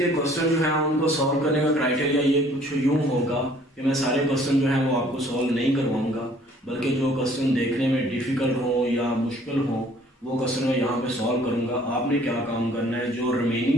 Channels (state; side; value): normal; both; correlation 0.57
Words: क्वेश्चन जो है उनको सॉल्व करने का क्राइटेरिया ये कुछ यूँ होगा कि मैं सारे क्वेश्चन जो है वो आपको सॉल्व नहीं करवाऊंगा, बल्कि जो क्वेश्चन देखने में डिफ़िकल्ट हो या मुश्किल हो वो क्वेश्चन मैं यहाँ पे सॉल्व करूँगा। आपने क्या काम करना है, जो